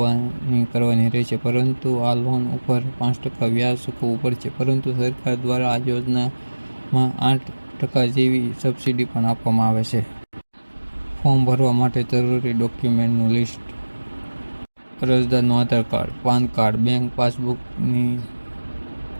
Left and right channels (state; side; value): inverted; both; correlation -1.00